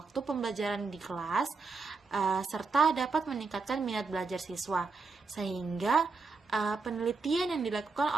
pembelajaran di kelas, serta dapat meningkatkan minat belajar siswa. Sehingga penelitian yang dilakukan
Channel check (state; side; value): quieter; left; 4.2 dB